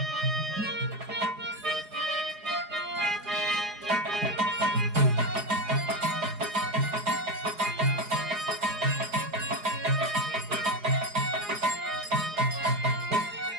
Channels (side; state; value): left; late; 4.8 ms